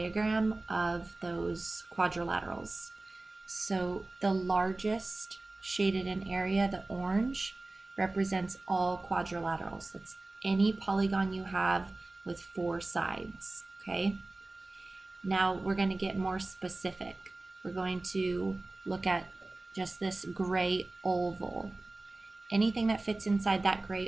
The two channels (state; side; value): quieter; left; 3.0 dB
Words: of those quadrilaterals. So the largest shaded in area, the orange, represents all quadrilaterals. That's any polygon you have with 4 sides, okay? Now we're going to get more specific. We're going to look at just this gray oval. Anything that fits inside that